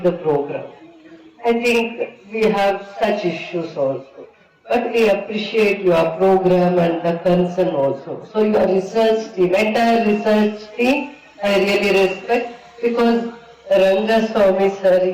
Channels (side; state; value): both; identical; correlation 1.00